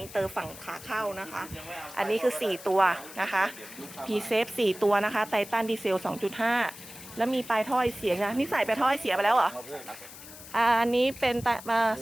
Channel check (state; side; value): noise; left; hiss, 16 dB below the sound